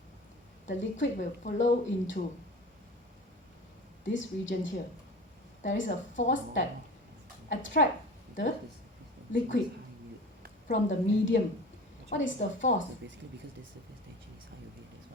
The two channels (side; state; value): both; normal; correlation 0.36